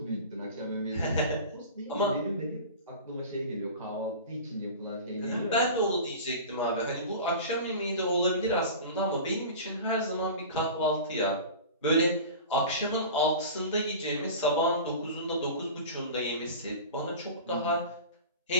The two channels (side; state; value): both; inverted; correlation -0.35